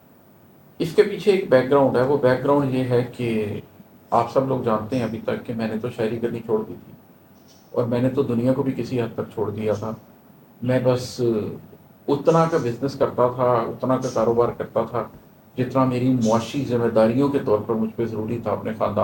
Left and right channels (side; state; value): both; identical; correlation 1.00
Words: اس کے پیچھے ایک بیک گراؤنڈ ہے، وہ بیک گراؤنڈ یہ ہے کہ آپ سب لوگ جانتے ہیں ابھی تک کہ میں نے تو شاعری کرنی چھوڑ دی تھی، اور میں نے تو دنیا کو بھی کسی حد تک چھوڑ دیا تھا۔ میں بس اتنا کا بزنس کرتا تھا، اتنا کا کاروبار کرتا تھا جتنا میری معاشی ذمہ داریوں کے طور پر مجھ پہ ضروری تھا اپنے